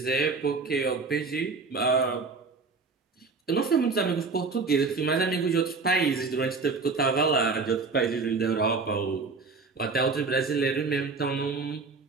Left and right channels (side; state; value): left; quieter; 4.3 dB